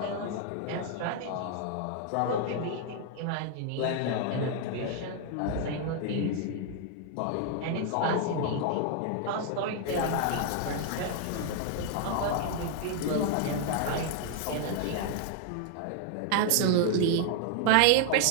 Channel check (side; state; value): both; different; correlation 0.00